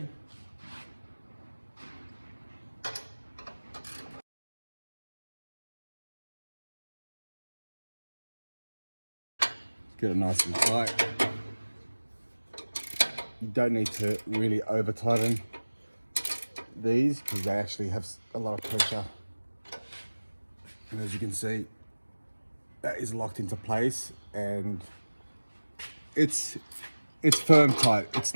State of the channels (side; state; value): both; inverted; correlation -1.00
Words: Get it nice and tight. You don't need to really over tighten these because they actually have a lot of pressure. And as you can see, that is locked into place and it's firm tight. It's